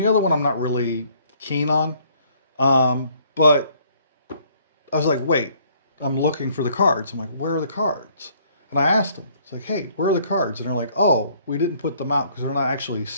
other one I'm not really keen on. But I was like, wait, I'm looking for the cards. I'm like, where are the cards? And I asked them, it's like, hey, where are the cards? And they're like, oh, we didn't put them out because we're not actually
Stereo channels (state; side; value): inverted; both; correlation -0.62